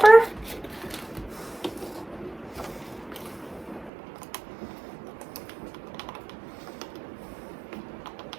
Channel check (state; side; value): drops out; left; at 3.9 s